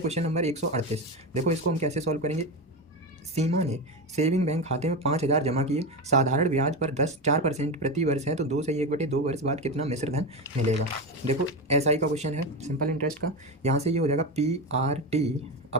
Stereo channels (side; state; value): both; normal; correlation 0.18